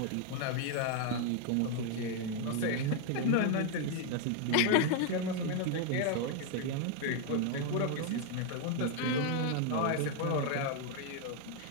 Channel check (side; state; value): both; different; correlation 0.00